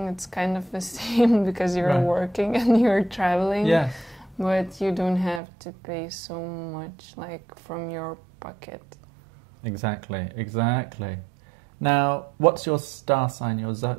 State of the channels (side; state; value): left; drops out; at 5.4 s